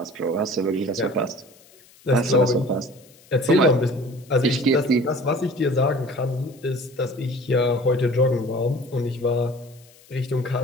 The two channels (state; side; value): noise; left; hiss, 27 dB below the sound